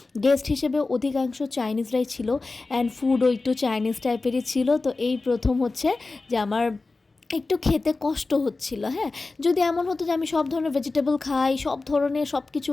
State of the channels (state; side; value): quieter; right; 3.6 dB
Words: গেস্ট হিসেবে অধিকাংশ চাইনিজরাই ছিল, অ্যান্ড ফুডও একটু চাইনিজ টাইপেরই ছিল। তো এই প্রথম হচ্ছে যে আমার একটু খেতে কষ্ট হচ্ছিল। হ্যাঁ, যদি এমন হতো যে আমি সব ধরনের ভেজিটেবল খাই, সব ধরনের সব কিছু